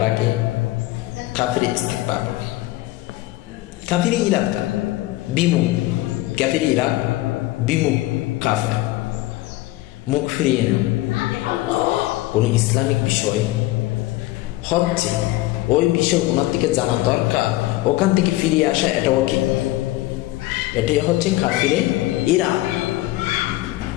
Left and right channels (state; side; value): quieter; right; 17.7 dB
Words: কাফিরে ইস্তেকবার বলে। কাফিরে ইরাদ বিমুখ, কাফিরে ইরাদ বিমুখ কাফের, মুখ ফিরিয়ে না। কোন ইসলামিক বিষয় হচ্ছে ওই বিষয় ওনার দিকে জানা দরকার, ওখান থেকে ফিরিয়ে আসা, এটাও কি, এটাই হচ্ছে কাফিরে ইরাদ।